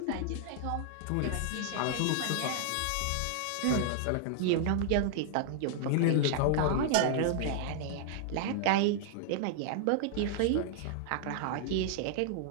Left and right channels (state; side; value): different; both; correlation -0.01